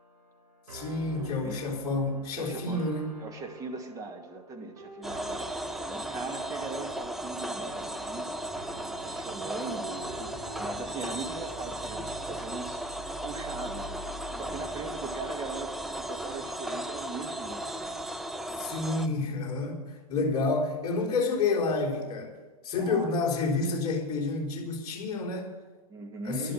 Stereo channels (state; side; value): normal; both; correlation 0.29